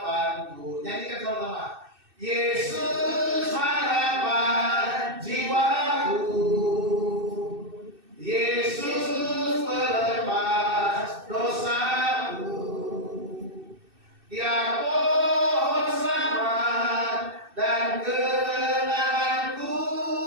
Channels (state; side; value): late; left; 2.6 ms